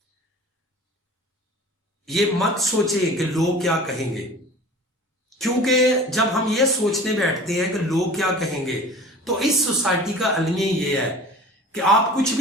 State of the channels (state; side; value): normal; both; correlation 0.41